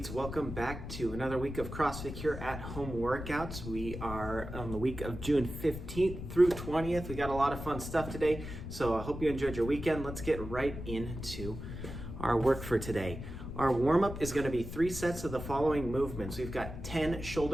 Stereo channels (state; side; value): noise; left; rumble, 8 dB below the sound